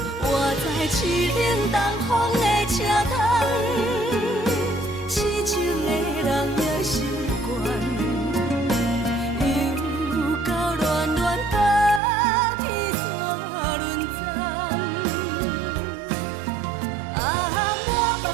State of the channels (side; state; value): left; drops out; at 12.0 s